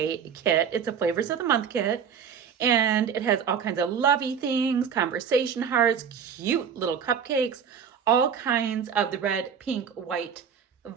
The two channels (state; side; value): quieter; left; 7.3 dB